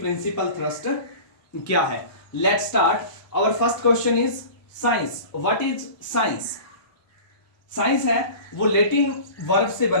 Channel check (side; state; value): right; late; 1.2 ms